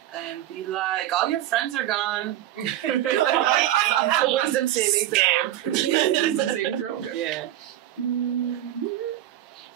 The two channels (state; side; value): quieter; left; 13.1 dB